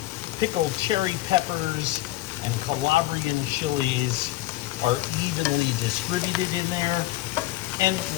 pickled cherry peppers and Calabrian chilies are evenly distributed in there. And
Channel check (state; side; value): quieter; right; 16.8 dB